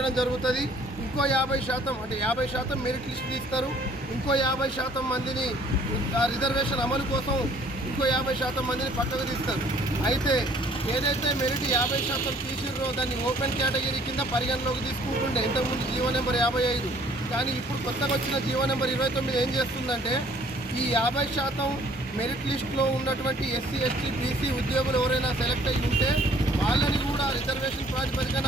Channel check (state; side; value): normal; both; correlation 0.58